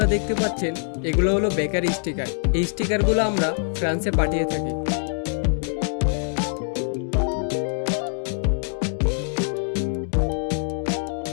দেখতে পাচ্ছেন, এগুলো হলো বেকারি স্টিকার। এই স্টিকারগুলো আমরা ফ্রান্সে পাঠিয়ে থাকি।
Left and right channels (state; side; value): silent; right; 63 dB below the other